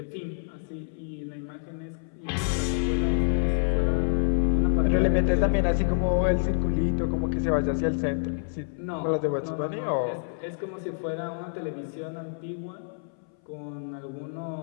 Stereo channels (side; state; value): right; silent; 60 dB below the other